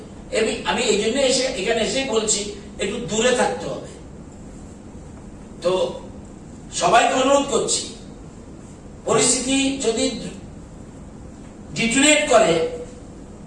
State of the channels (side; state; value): both; identical; correlation 1.00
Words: আমি এই জন্য এখানে এসেই বলছি, একটু দূরে থাকতে হবে। তো সবাইকে অনুরোধ করছি, পরিস্থিতি যদি ডিটেরিয়েট করে